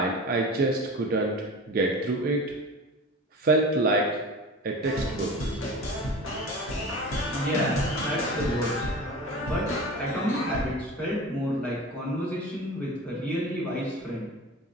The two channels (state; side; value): normal; both; correlation 0.35